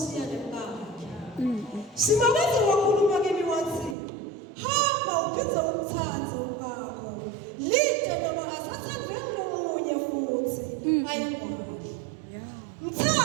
nemkakhe. Simakaze wakhuluma kimi wathi, hamba uphize umthanzo wakho. Lide noma asathandwe nomunye futhi ayingwali.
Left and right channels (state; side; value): drops out; left; at 4.0 s